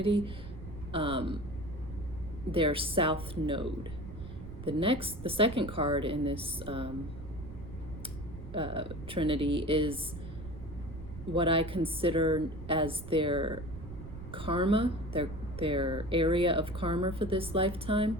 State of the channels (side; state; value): right; noise; rumble, 12 dB below the sound